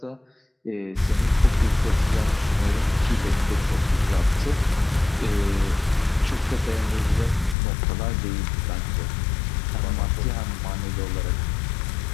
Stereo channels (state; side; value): drops out; right; at 7.6 s